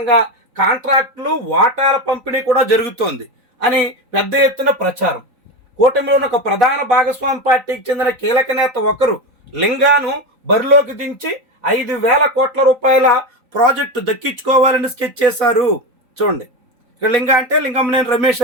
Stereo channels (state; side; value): late; left; 3.9 ms